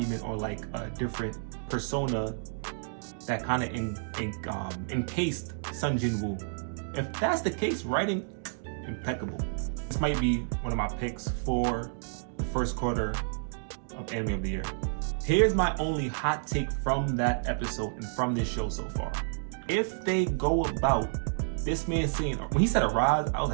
or like a different persona that kind of encased Sun Jin-woo. If that's the case, writing, impeccable. This might be one of my picks for the first quarter of Anime of the Year. Here's my only hot take from that episode and from this show so far. If they go about this man saying, when he said Arise, I was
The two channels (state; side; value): silent; left; digital silence